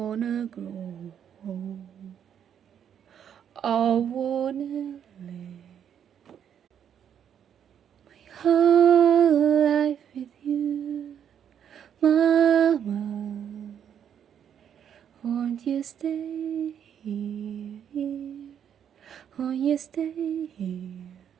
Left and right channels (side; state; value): left; quieter; 8.9 dB